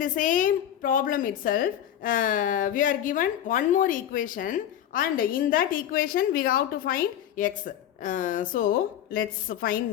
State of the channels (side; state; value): right; quieter; 10.8 dB